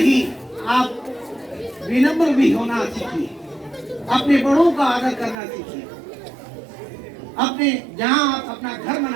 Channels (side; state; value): left; drops out; at 5.4 s